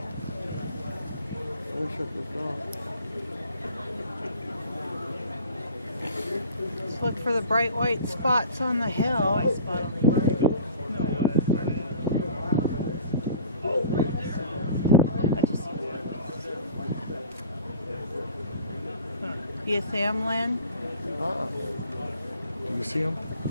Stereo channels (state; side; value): inverted; both; correlation -0.43